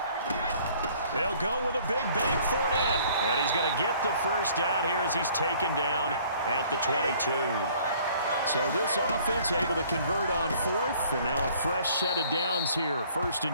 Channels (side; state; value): both; inverted; correlation -0.56